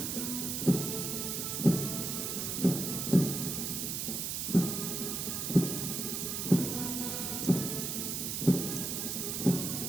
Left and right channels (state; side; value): noise; right; hiss, 2 dB below the sound